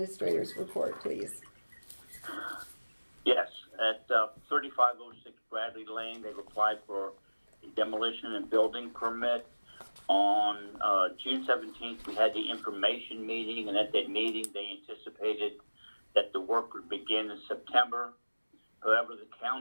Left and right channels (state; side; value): inverted; both; correlation -1.00